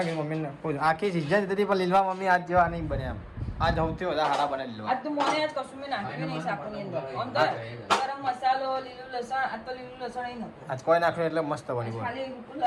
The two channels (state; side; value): identical; both; correlation 1.00